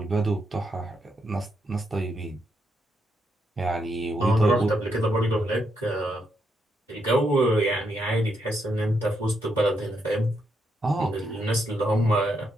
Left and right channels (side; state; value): both; normal; correlation 0.79